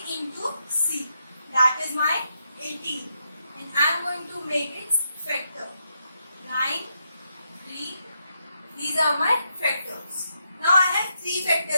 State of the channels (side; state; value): both; inverted; correlation -0.81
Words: into c. That is my 18. And I am going to make its factor. 9, 3. These are my factors. Now I have 3